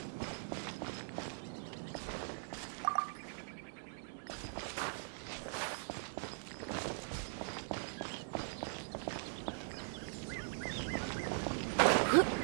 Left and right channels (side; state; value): left; silent; digital silence